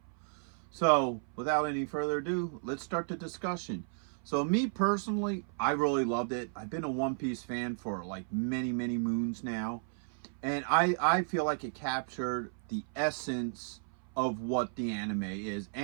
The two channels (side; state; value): left; silent; 55 dB below the other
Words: So, without any further ado, let's start the discussion. So, me personally, I really loved it. I've been a One Piece fan for like many moons now. And I feel like it captured the essence of what the anime is,